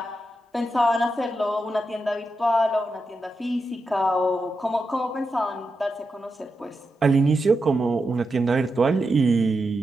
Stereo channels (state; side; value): normal; both; correlation 0.87